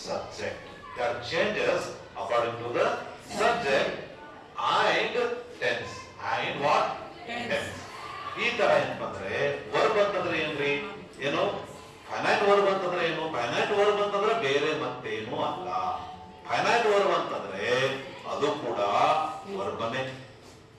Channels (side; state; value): both; identical; correlation 1.00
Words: That changes according to the subject and tense. And what? Tense. ಈ ತರ ಏನಪ್ಪ ಅಂದ್ರೆ verb ಅಂತಂದ್ರೆ ಏನ್ರಿ? ಏನು finite verb ಅಂತಂದ್ರೆ ಏನು? Finite verb ಅಂತಂದ್ರೆ ಬೇರೆ ಮತ್ತೇನು ಅಲ್ಲ. ಫೈನೈಟ್ ವರ್ಬ್ ಅಂತಂದ್ರೆ ಅದು ಕೂಡ ವರ್ಬನೇ.